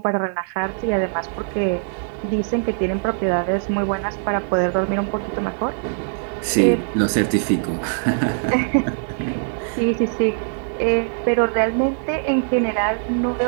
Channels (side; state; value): left; silent; 58 dB below the other